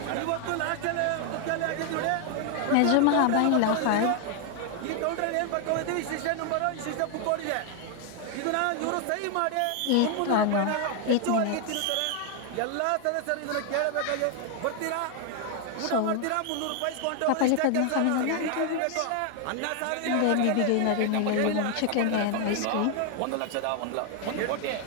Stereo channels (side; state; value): both; different; correlation 0.00